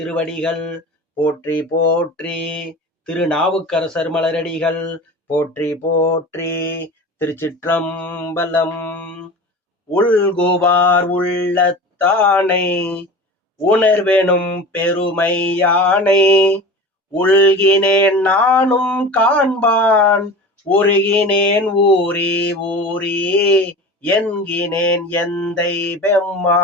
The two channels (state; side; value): normal; both; correlation 0.34